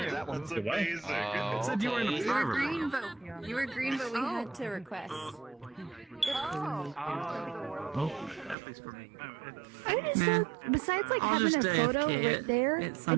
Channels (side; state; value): left; drops out; at 8.6 s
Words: That one's amazing. Said you were in a green, but you were green, but we had to request. I just don't, besides like having a photo right there, I